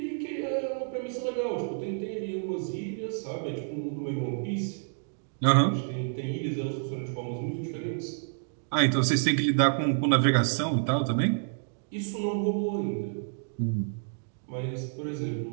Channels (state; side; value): silent; left; digital silence